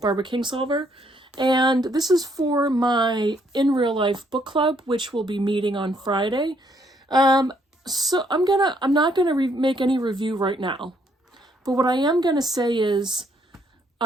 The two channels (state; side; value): normal; both; correlation 0.69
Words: Barbara Kingsolver. And this is for my In Real Life book club, which will be meeting on Friday. So I'm not gonna make any review right now. But what I am gonna say is